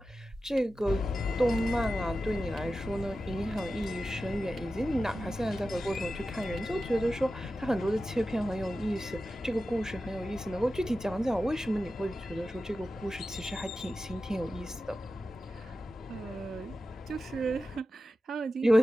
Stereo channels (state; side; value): normal; both; correlation 0.93